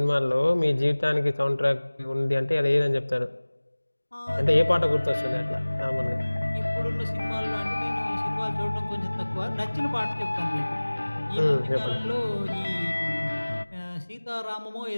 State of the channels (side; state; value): both; inverted; correlation -1.00